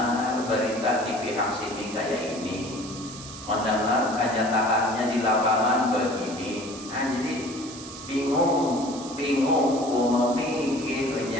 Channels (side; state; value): right; noise; hiss, 13 dB below the sound